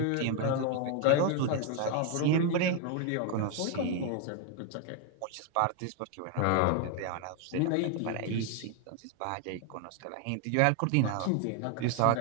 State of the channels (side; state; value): both; different; correlation 0.01